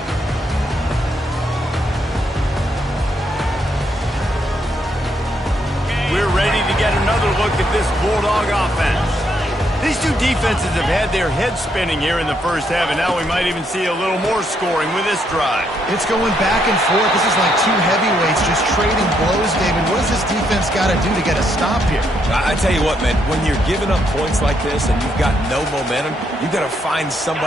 We're ready to get another look at this Bulldog offense. These two defenses have had their heads spinning here in the first half, and now we might even see a little more scoring with this drive. It's going back and forth. This is like two heavyweights just trading blows, David. What does this defense got to do to get a stop here? I tell you what, man, when you're giving up points like this and you've got no momentum, you've got to find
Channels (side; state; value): both; normal; correlation 0.75